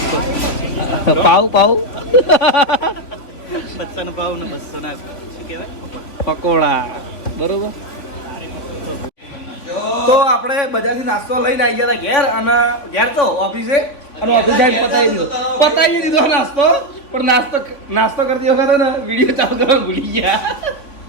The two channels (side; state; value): right; late; 3.4 ms